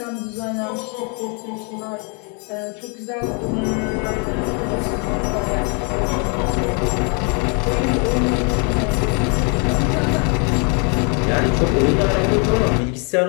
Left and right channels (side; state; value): right; quieter; 36.5 dB